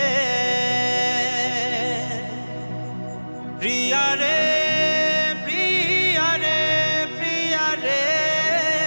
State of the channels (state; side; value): inverted; both; correlation -1.00